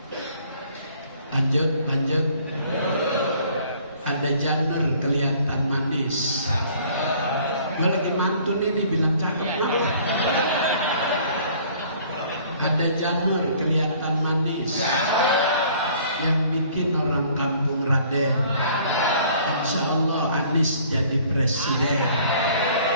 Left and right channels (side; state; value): both; inverted; correlation -0.56